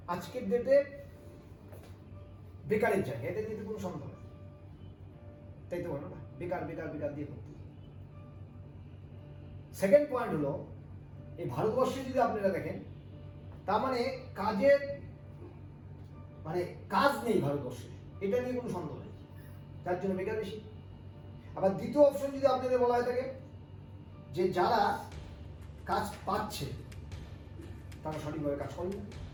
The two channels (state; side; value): identical; both; correlation 1.00